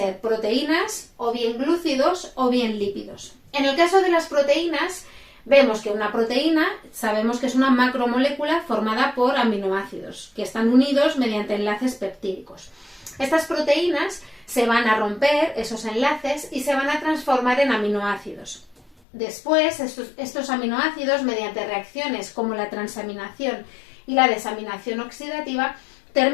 proteínas, o bien glúcidos o bien lípidos. En el caso de las proteínas, vemos que una proteína sabemos que es una macromolécula formada por aminoácidos que están unidos mediante enlaces peptídicos. Estas proteínas se van a romper esos enlaces y se van a transformar en aminoácidos. Después, estos aminoácidos, mediante reacciones como la transaminación y la desaminación oxidativa,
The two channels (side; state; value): right; drops out; at 18.9 s